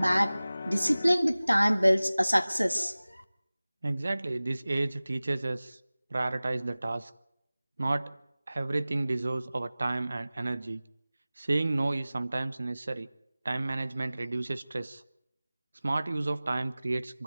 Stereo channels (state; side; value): inverted; both; correlation -0.98